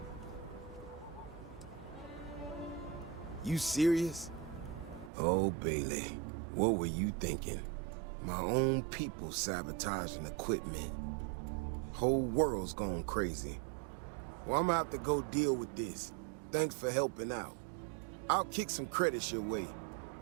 You serious? Oh, Bailey, what were you thinking? My own people sabotaging equipment. Whole world's gone crazy. Well, I'm gonna have to go deal with this. Thanks for helping out. I'll kick some credits your way.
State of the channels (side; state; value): left; drops out; at 5.1 s